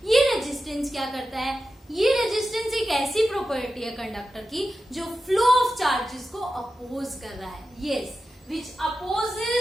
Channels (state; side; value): normal; both; correlation 0.92